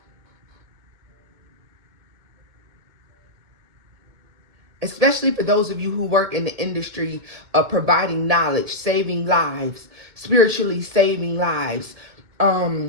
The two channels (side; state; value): left; late; 2.2 ms